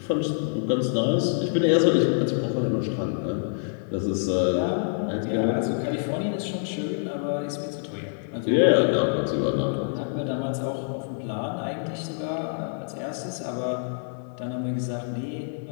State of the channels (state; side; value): silent; right; digital silence